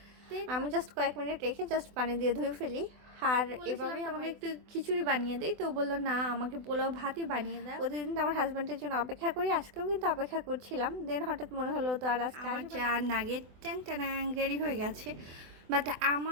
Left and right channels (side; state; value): left; late; 24 ms